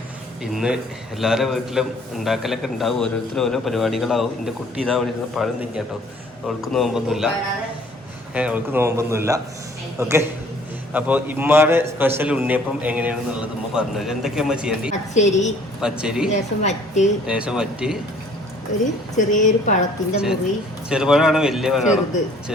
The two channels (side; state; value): both; normal; correlation 0.56